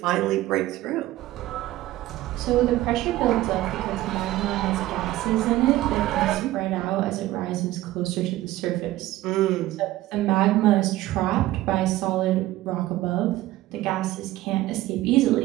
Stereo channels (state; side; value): quieter; left; 16.1 dB